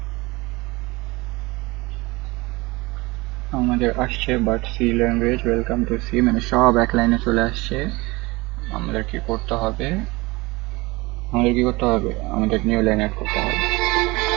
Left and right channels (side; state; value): left; quieter; 23.0 dB